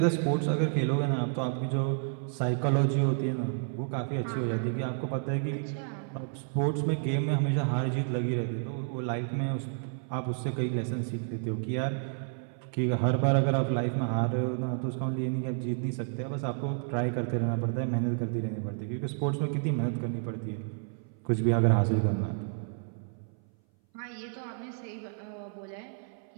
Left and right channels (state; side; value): silent; left; 57 dB below the other